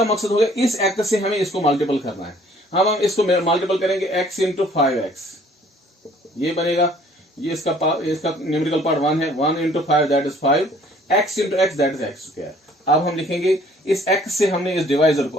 मकसद हो गया इस x से हमें इसको मल्टीपल करना है, हम इसको मल्टीपल करेंगे x इंटू 5x, ये बनेगा, ये इसका न्यूमेरिकल पार्ट 1 है, 1 into 5 that is 5, x into x that is x²। अब हम लिखेंगे इस x से हमने इस डिवाइजर को,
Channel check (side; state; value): both; normal; correlation 0.57